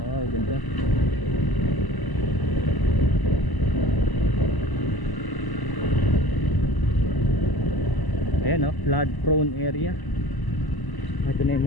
Oh, ganda. Ayan, flood prone area. Ito na yung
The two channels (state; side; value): late; right; 1.0 ms